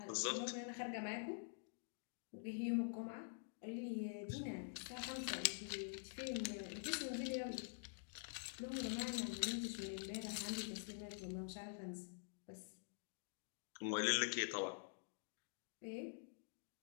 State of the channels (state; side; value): silent; right; digital silence